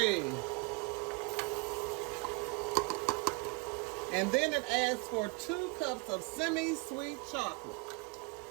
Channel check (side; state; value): left; quieter; 29.5 dB